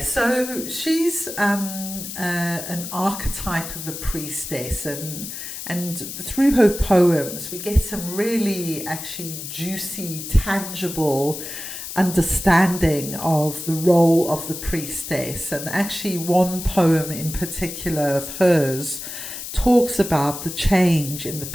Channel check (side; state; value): left; noise; hiss, 8 dB below the sound